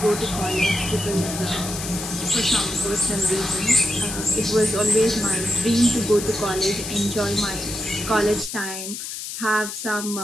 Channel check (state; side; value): noise; left; hiss, 7 dB below the sound